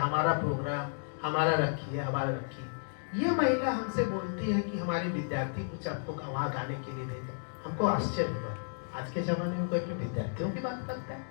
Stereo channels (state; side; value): silent; right; digital silence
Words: प्रोग्राम हमारा रखिए, हमारा रखिए। ये महिला हमसे बोलती है कि हमारे विद्यार्थी कुछ आपको वहाँ गाने के लिए भेजा। हमको आश्चर्य हुआ, आज के जमाने में कोई अपने विद्यार्थियों की बात करता है?